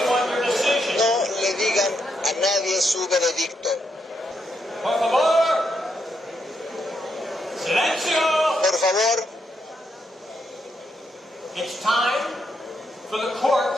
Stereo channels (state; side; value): normal; both; correlation 0.80